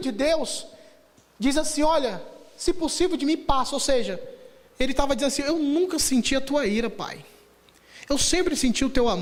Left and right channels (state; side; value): identical; both; correlation 1.00